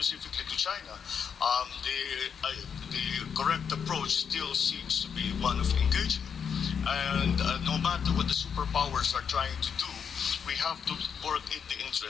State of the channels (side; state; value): right; quieter; 7.0 dB